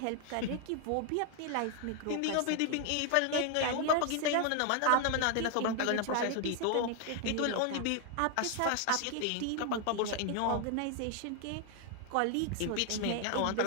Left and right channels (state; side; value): different; both; correlation 0.00